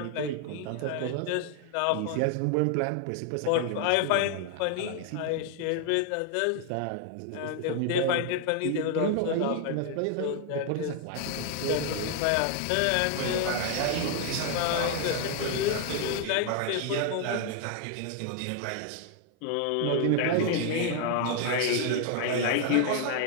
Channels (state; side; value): different; both; correlation 0.00